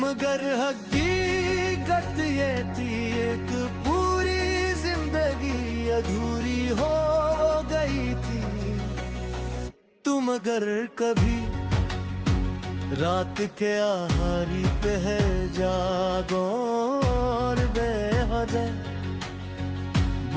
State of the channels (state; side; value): identical; both; correlation 1.00